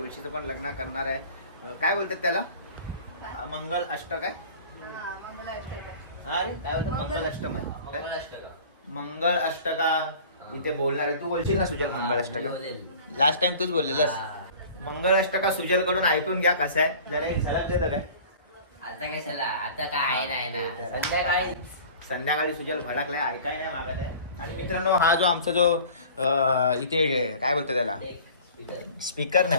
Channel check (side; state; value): both; inverted; correlation -0.44